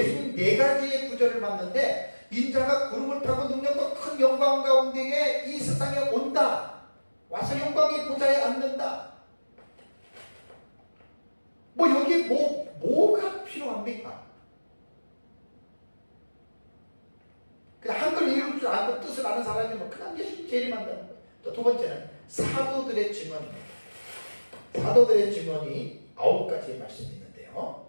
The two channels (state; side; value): inverted; both; correlation -1.00